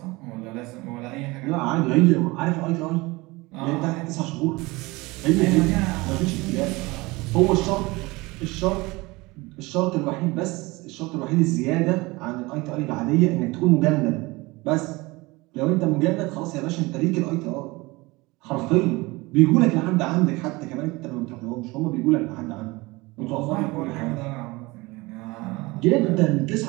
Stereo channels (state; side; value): quieter; left; 22.8 dB